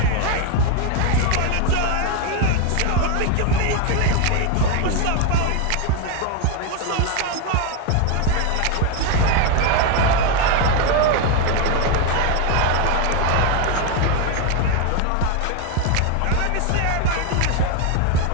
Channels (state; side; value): different; both; correlation 0.02